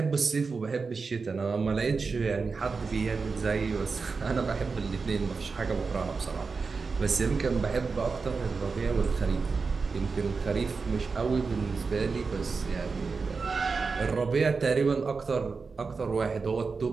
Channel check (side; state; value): left; quieter; 4.7 dB